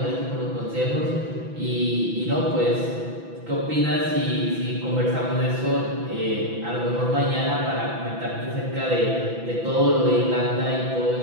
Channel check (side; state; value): left; late; 6.0 ms